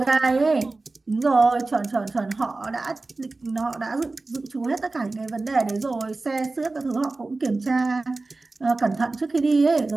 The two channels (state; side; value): quieter; left; 3.4 dB